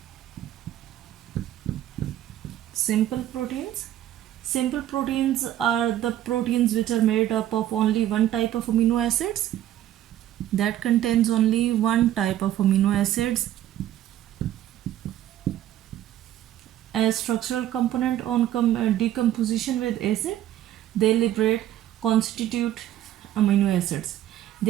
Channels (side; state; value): left; quieter; 12.5 dB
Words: Simple proteins. Simple proteins are the proteins which are made up of only one type of amino acids, that contains only one type of amino acids as structural component on decomposition with acid. They liberate constitute amino acids.